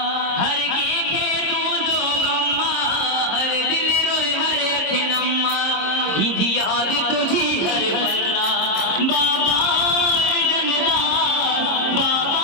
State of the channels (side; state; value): right; late; 26 ms